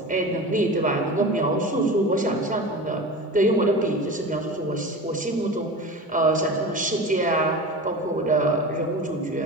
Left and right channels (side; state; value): both; normal; correlation 0.31